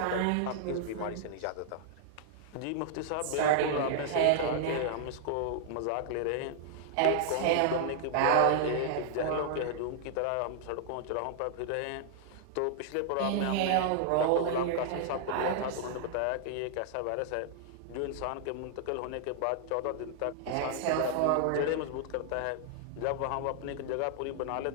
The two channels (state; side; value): different; both; correlation -0.01